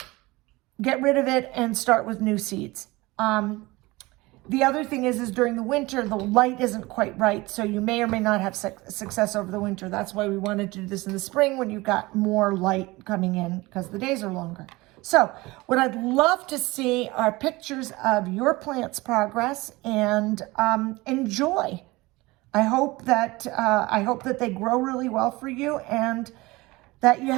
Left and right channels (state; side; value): quieter; left; 21.6 dB